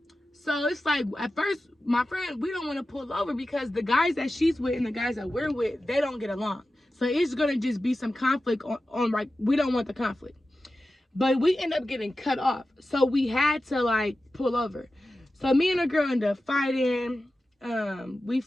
So it's like, at first, my friend, we don't want to pull over because the guys that she's with and the guys that we're with, they don't get along. So it's gonna just be some conflict on like, we don't want the conflict. But we end up getting cut off. So we had to like pull over. So me and a girl end up fighting. We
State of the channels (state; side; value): normal; both; correlation 0.94